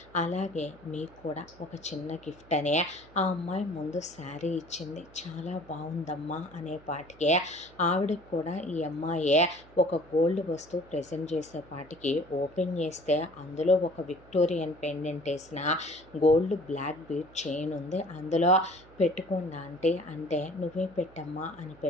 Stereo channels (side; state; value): right; noise; hum, 24 dB below the sound